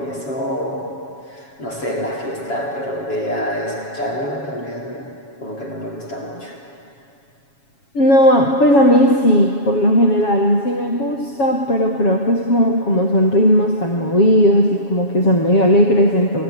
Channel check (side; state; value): right; late; 7.3 ms